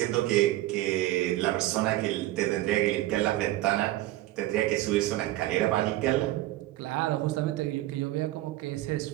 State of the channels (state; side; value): quieter; left; 16.3 dB